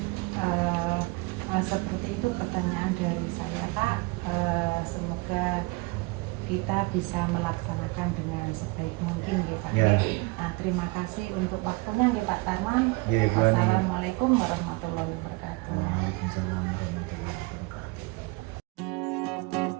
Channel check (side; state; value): left; quieter; 25.7 dB